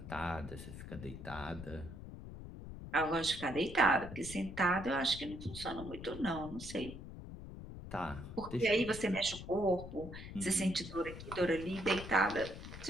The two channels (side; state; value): left; noise; rumble, 11 dB below the sound